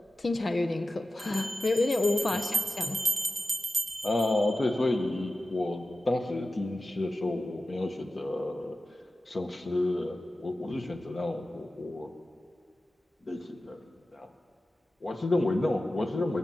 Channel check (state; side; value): normal; both; correlation 0.95